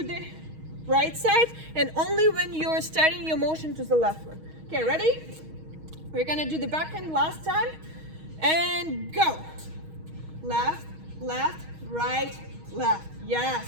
right side, and only when you're starting your motion to the left one. Okay, ready? We're gonna do the backhand last time, and go. Left, left, right, left.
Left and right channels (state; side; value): late; left; 6.3 ms